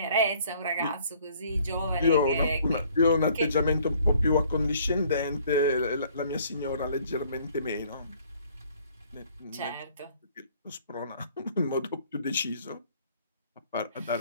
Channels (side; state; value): both; inverted; correlation -0.59